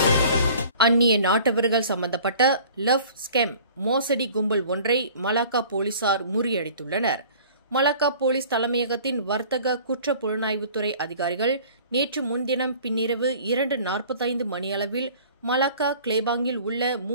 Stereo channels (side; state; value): both; inverted; correlation -0.48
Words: அந்நிய நாட்டவர்கள் சம்பந்தப்பட்ட லவ் ஸ்கெம் மோசடி கும்பல் ஒன்றை மலாக்கா போலீசார் முறியடித்துள்ளனர். மலாக்கா போலீஸ் தலைமையகத்தின் வர்த்தக குற்ற புலனாய்வுத்துறை அதிகாரிகள் நேற்று முன்தினம் பின்னிரவு 2:45 மணியளவில் மலாக்கா கிளேபாங்கில் உள்ள